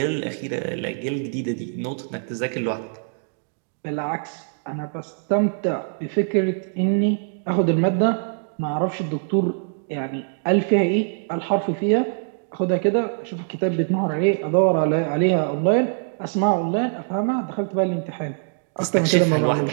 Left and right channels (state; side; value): silent; left; digital silence